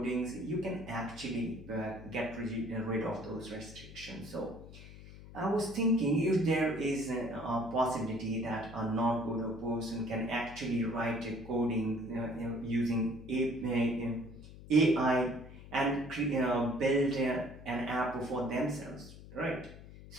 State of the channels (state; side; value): noise; left; hum, 16 dB below the sound